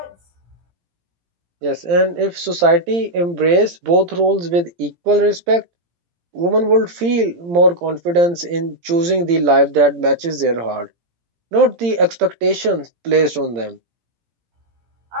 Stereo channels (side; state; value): left; late; 17 ms